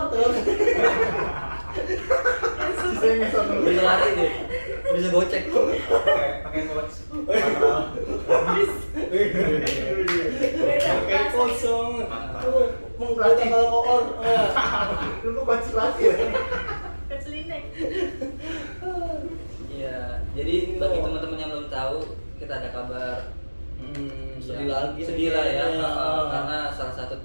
tuh. Sisanya nggak sama lu. Bisa lari deh. Bisa gocek. Pakai coach. beda Kayak bahasa. kosong. Tuh, mengkata kalau koor. Lu kok konsultasi ya? Keselineng. Iya. Jadi bagi teman-teman yang belum tahu, kita ada kabar. Sedih Ya, lagi. sedih lah ya, Iya. karena salah satu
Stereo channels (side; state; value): both; inverted; correlation -1.00